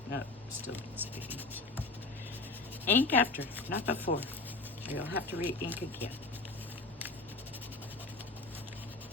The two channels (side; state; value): right; quieter; 3.3 dB